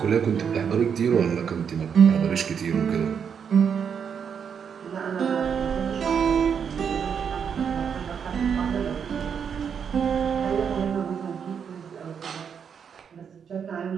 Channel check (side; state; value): left; quieter; 7.2 dB